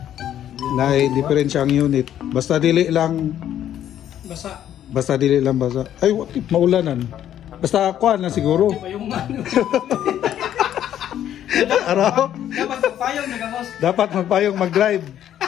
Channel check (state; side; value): quieter; right; 10.9 dB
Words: naay diferensya ang unit. Basta dili lang basa dili lang basa. Ay maulanan. Basta kuan na siguro. Araw. Dapat magpayong nagamos. Dapat magpayong mag-drive.